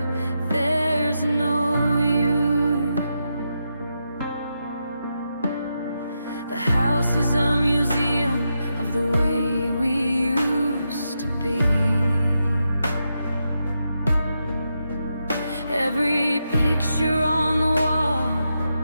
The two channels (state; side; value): inverted; both; correlation -0.85